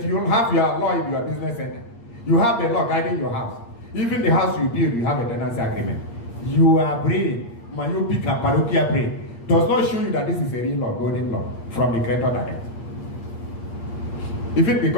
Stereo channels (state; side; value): late; right; 8.6 ms